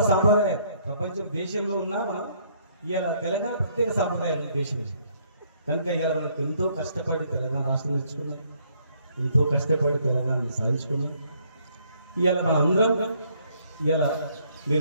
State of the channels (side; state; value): both; inverted; correlation -0.67